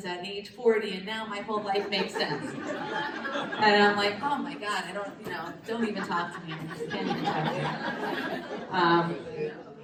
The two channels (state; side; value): identical; both; correlation 1.00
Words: at age 40, and now my whole life makes sense. And I'm like, oh my God, don't even talk to me. I just can't even talk to you.